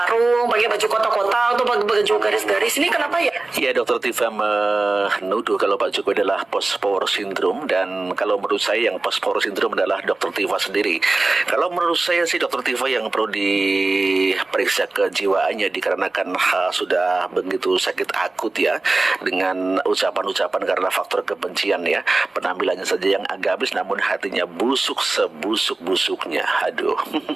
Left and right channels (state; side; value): quieter; left; 3.2 dB